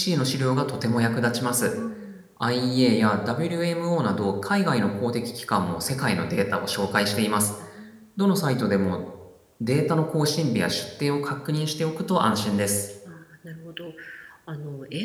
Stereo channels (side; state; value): both; identical; correlation 1.00